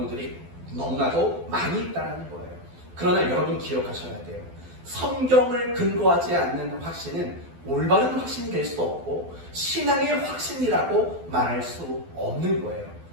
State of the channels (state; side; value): late; left; 12 ms